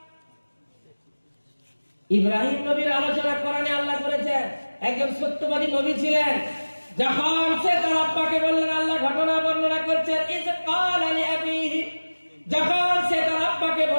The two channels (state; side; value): inverted; both; correlation -1.00